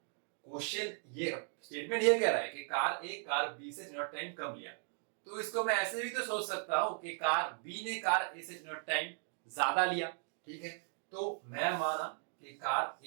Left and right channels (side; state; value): left; silent; 53 dB below the other